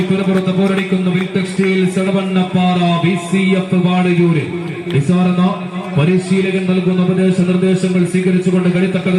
പുറപ്പുറത്ത് പോരടിക്കുന്ന വിൽ ടെക്സ്റ്റൈൽസ് എടവണ്ണപ്പാറ BCF വാടയൂര്. നിസാറെന്ന പരിശീലകൻ നൽകുന്ന ഉപദേശ നിർദ്ദേശങ്ങൾ സ്വീകരിച്ചുകൊണ്ട്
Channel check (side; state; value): both; identical; correlation 1.00